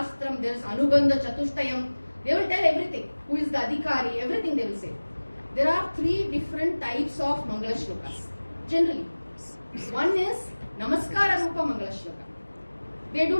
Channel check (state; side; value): inverted; both; correlation -1.00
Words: there is Anubandha Chatushtayam. They will tell everything. Who is the Adhikari, everything they will say. There are three different types of Mangala Shlokas. Generally, one is Namaskara Rupa Mangala Shloka. They do